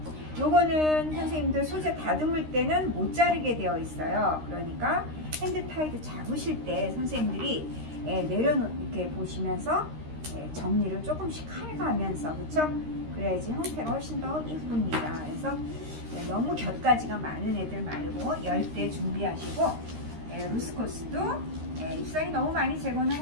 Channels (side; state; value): left; late; 13 ms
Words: 요거는 선생님들 소재 다듬을 때는 못 자르게 되어 있어요. 그러니까 핸드타이드 잡으실 때 선생님들이 이렇게 보시면서 정리를 조금씩 해가면서, 그쵸? 그래야지 형태가 훨씬 더 예쁩니다. 그래서 너무 곁가지가 많은 애들 말고 10대 준비하시고, 루스커스도 잎사귀 너무 많이 제거는